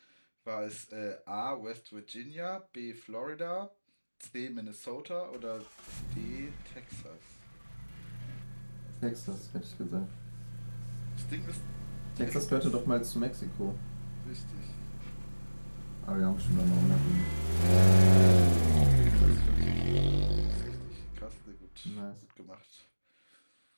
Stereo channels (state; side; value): inverted; both; correlation -1.00